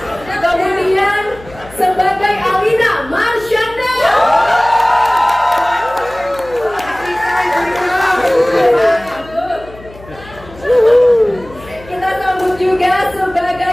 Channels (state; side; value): noise; left; hum, 20 dB below the sound